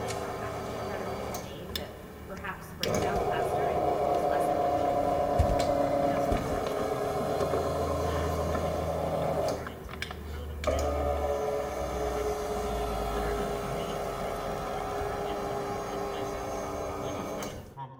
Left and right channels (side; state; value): both; identical; correlation 1.00